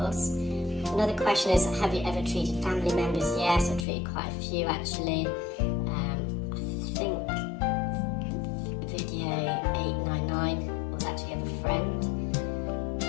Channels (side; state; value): right; drops out; at 3.9 s